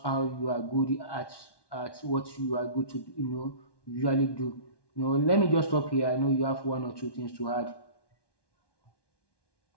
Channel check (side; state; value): right; late; 1.1 ms